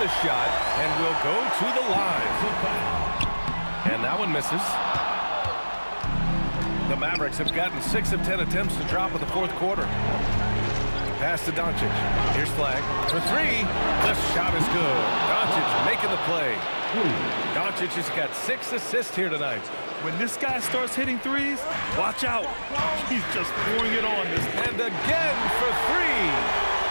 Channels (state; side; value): inverted; both; correlation -1.00